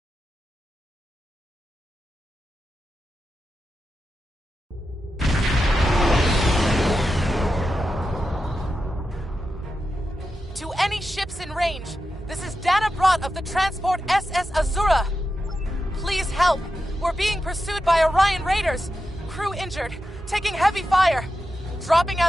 To any ships in range, this is Dana Brott of the transport SS Azura. Please help. We're being pursued by Orion Raiders. Crew injured, taking heavy fire. Dropping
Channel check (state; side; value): normal; both; correlation 0.89